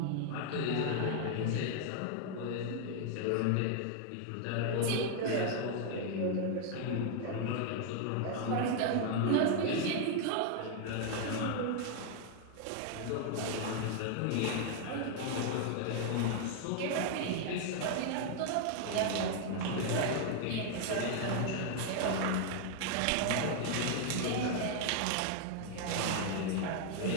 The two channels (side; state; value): both; different; correlation 0.00